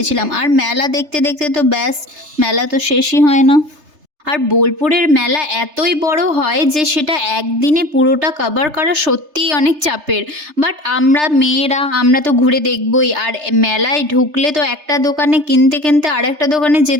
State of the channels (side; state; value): left; late; 3.3 ms